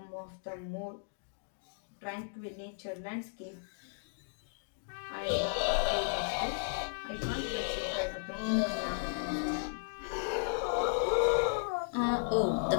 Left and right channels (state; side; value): silent; right; digital silence